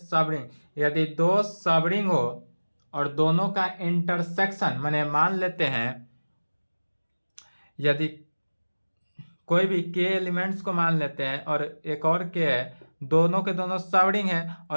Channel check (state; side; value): inverted; both; correlation -1.00